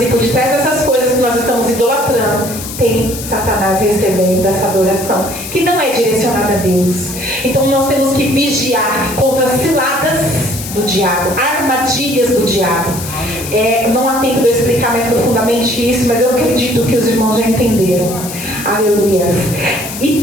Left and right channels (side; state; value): left; noise; hiss, 10 dB below the sound